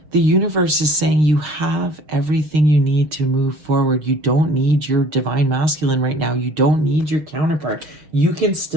the universe is saying you have everything you need to move forward. You don't need your divine masculine right now. You don't need your counterpart. You can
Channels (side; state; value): left; late; 6.6 ms